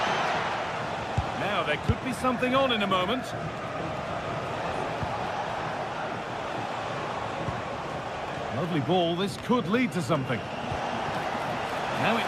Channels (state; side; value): identical; both; correlation 1.00